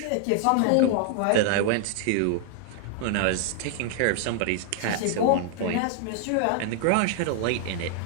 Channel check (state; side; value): different; both; correlation 0.00